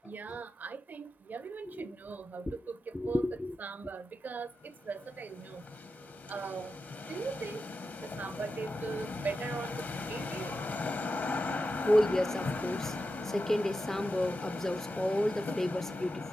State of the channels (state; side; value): normal; both; correlation 0.90